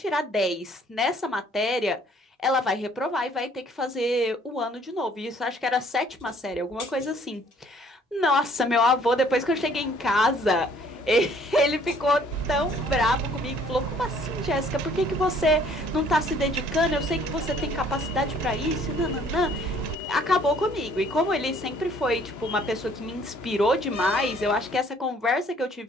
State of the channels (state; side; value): normal; both; correlation 0.59